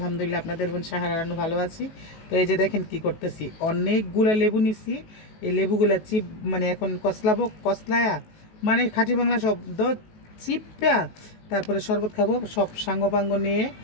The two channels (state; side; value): late; right; 19 ms